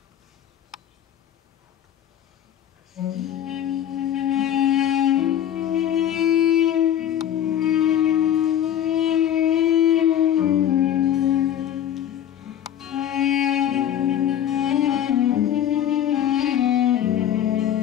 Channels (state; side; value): quieter; right; 10.5 dB